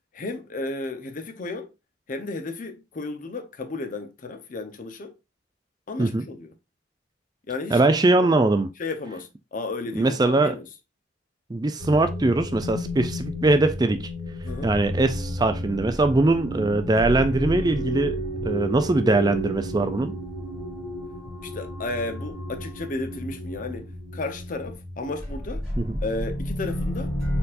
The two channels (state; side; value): normal; both; correlation 0.67